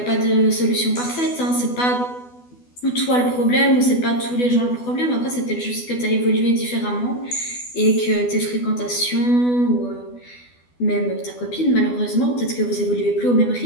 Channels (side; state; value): right; late; 12 ms